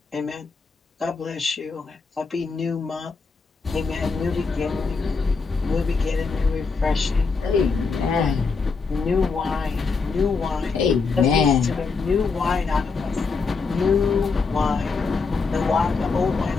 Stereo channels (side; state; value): right; quieter; 4.6 dB